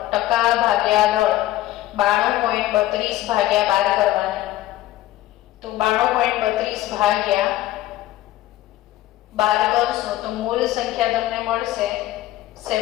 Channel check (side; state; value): right; quieter; 15.2 dB